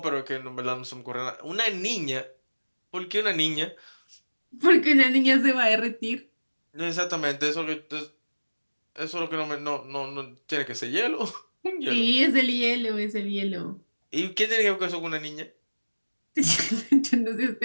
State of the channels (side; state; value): both; inverted; correlation -1.00